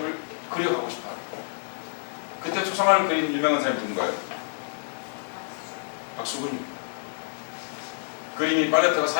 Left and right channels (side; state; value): right; silent; digital silence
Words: 그려가고 싶어요. 그때 초상화를 그린 유명한 사람이 누군가요? 박수근입니다. 그림이 팔레트가